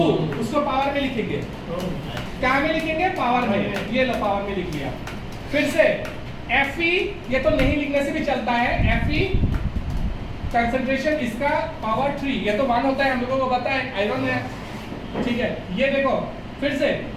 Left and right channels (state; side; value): identical; both; correlation 1.00